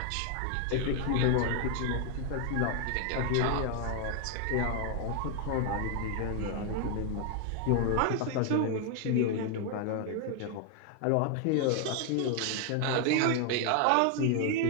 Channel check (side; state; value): both; different; correlation 0.00